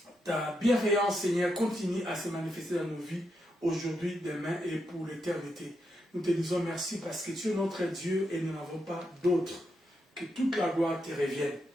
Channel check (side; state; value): both; normal; correlation 0.83